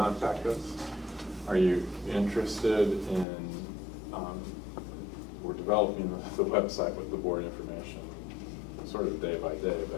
us. Are you interested in, we're developing the website with the board information sort of day by day,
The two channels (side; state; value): right; drops out; at 3.2 s